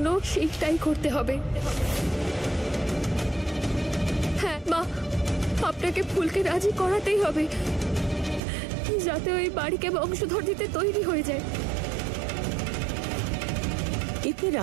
সেইটাই করতে হবে। হ্যাঁ মা, আপনাকে ফুলকে রাজি করাতেই হবে, যাতে ওই বাড়িকে বংশধর দিতে তৈরি হয়ে যায়। এতে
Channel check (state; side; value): drops out; left; at 8.4 s